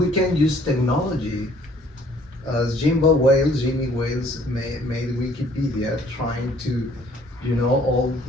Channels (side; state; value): both; normal; correlation 0.59